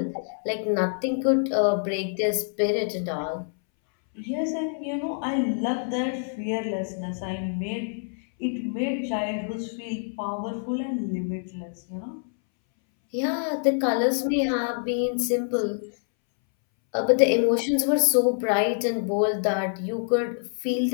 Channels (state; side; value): silent; right; 61 dB below the other